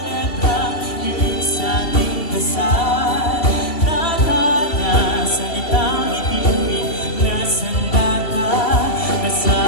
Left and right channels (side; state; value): right; late; 2.7 ms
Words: latang hiling sa ating dasal. Tadhana, salitang itinuring na sandata.